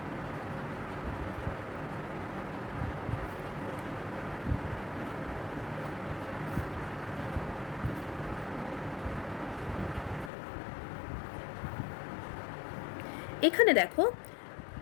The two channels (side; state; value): right; drops out; at 10.3 s